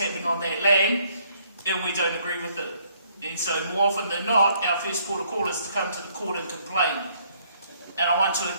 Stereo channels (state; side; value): inverted; both; correlation -0.66